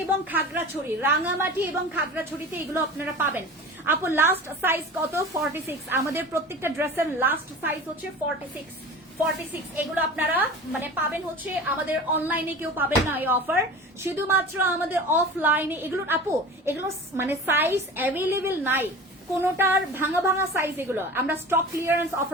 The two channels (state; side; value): normal; both; correlation 0.36